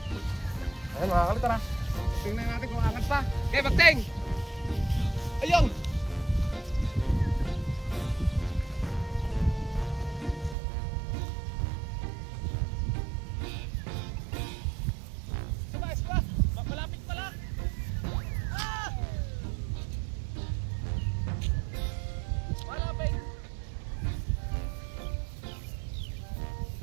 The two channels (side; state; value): left; drops out; at 10.6 s